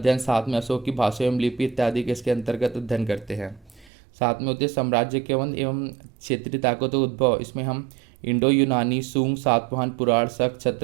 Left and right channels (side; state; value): left; drops out; at 3.9 s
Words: साथ में अशोक की भाषा एवं लिपि इत्यादि के इसके अंतर्गत अध्ययन करते हैं। साथ में होते साम्राज्य के एवं क्षेत्रीय ताकतों का उद्भव, इसमें हम इंडो यूनानी, सूंग, सातवाहन, पुराण, शक,